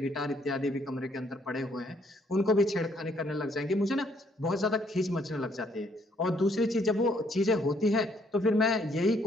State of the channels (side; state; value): both; normal; correlation 0.68